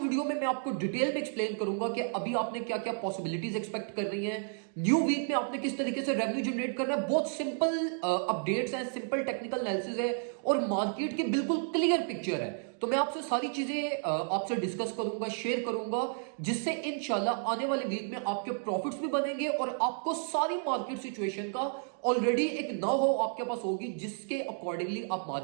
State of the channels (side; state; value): left; silent; 57 dB below the other